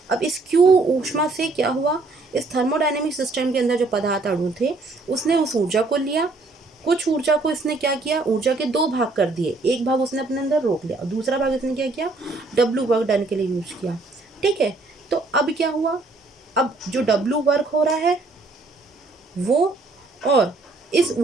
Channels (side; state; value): left; quieter; 3.4 dB